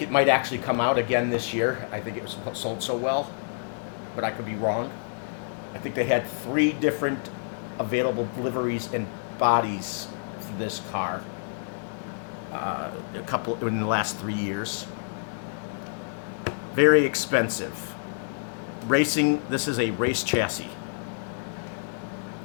it might actually come out again this year. I think it was sold so well, but I could be wrong. I think they had 3 different available liveries and bodies for this car. A couple in the last 3 years. Very expensive. Racing, this is a race chassis.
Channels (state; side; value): silent; right; digital silence